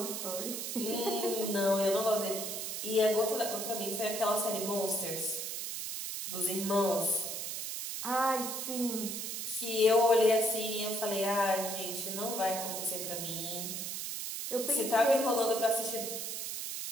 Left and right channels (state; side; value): noise; right; hiss, 4 dB below the sound